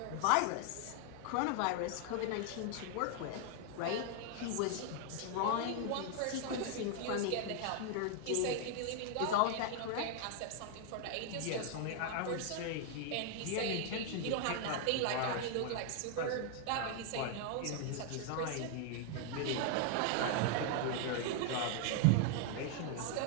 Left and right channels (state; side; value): different; both; correlation 0.00